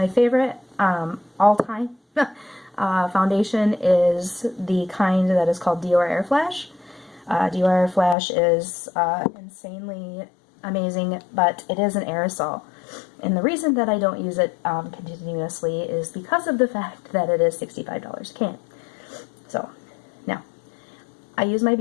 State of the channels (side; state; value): right; drops out; at 8.2 s